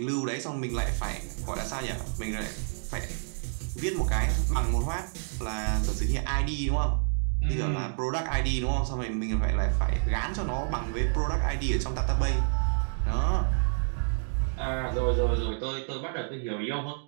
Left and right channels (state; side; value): silent; left; 59 dB below the other